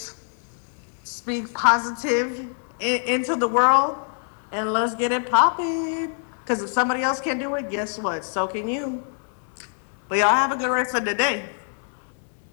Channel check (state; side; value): silent; right; 62 dB below the other